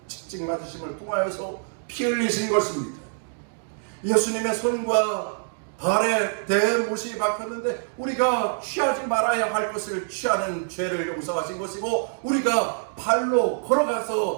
채찍 맞으심을 통하여서 피 흘리신 것입니다. 예수님의 손과 발에 대못이 박혔는데 우리가 취하지 말아야 할 것을 취하는 죄를 용서하신 것이고 우리가 발로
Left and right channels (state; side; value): silent; left; digital silence